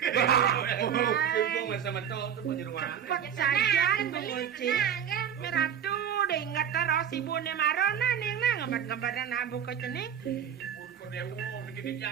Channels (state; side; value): quieter; left; 8.6 dB